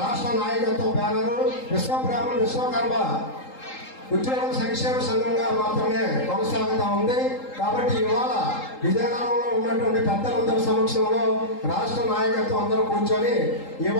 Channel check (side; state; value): right; late; 3.8 ms